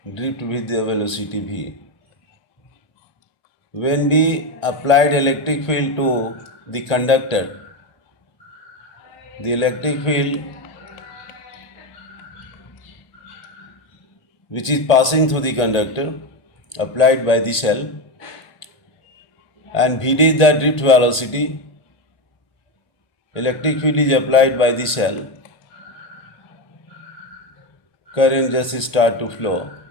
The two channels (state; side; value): late; right; 1.8 ms